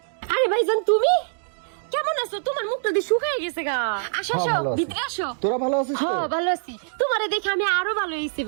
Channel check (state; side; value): silent; left; digital silence